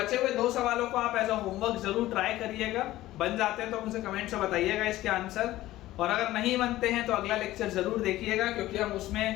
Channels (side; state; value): right; quieter; 15.9 dB